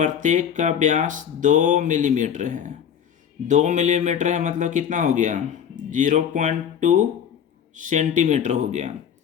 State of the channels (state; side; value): quieter; right; 8.5 dB